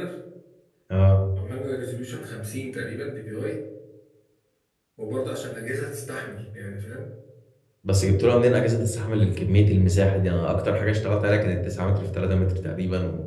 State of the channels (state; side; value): identical; both; correlation 1.00